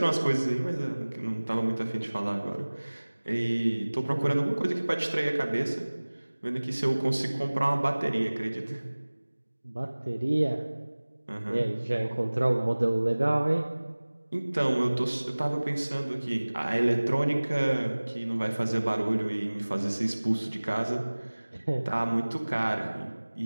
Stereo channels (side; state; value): both; inverted; correlation -1.00